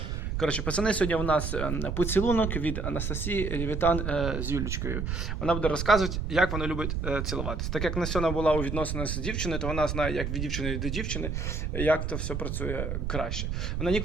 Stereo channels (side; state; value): right; noise; rumble, 2 dB below the sound